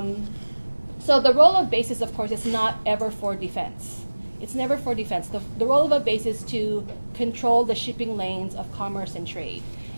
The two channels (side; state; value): both; inverted; correlation -1.00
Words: So the role of bases, of course, is not ever for defense. It's never for defense. The role of a base is to control the shipping lanes of commerce and trade.